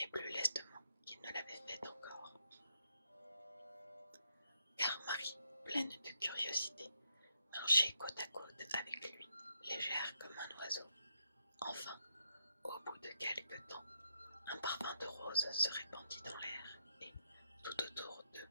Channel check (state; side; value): inverted; both; correlation -0.78